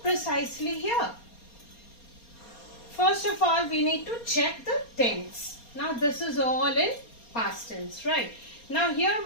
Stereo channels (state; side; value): late; right; 4.3 ms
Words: precisely here? First of all, we need to check the tense. Now, this is all in past tense, right? Now, here